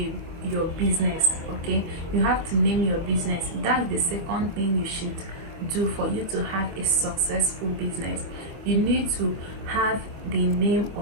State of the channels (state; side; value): late; left; 25 ms